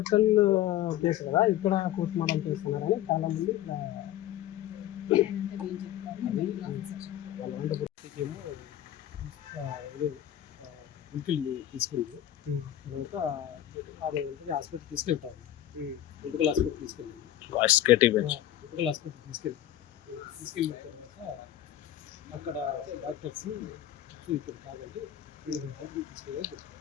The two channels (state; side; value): quieter; right; 12.3 dB